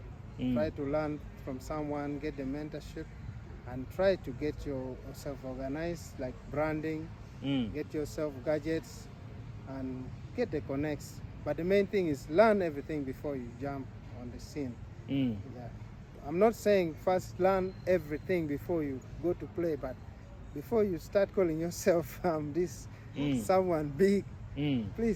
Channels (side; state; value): both; identical; correlation 1.00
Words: Try to learn from someone, get the mentorship, and try to get yourself organized, like branding, get yourself gadgets, and get the connects. But the main thing is learn everything before you jump on the scene. Yeah. I'm not saying first learn everything before you go to play, but before you start calling yourself this someone big,